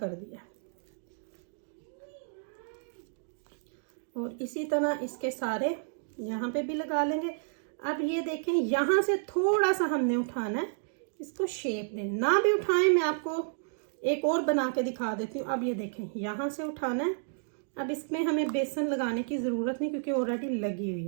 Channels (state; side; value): silent; left; digital silence